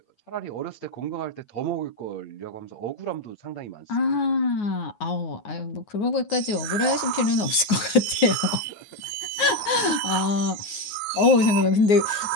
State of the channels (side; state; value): right; late; 9.5 ms